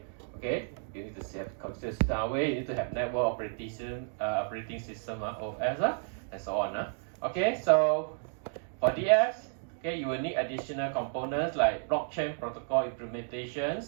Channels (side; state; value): left; silent; digital silence